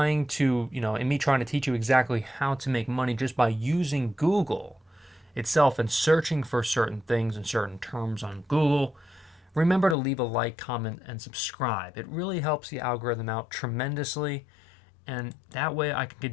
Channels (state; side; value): drops out; right; at 10.0 s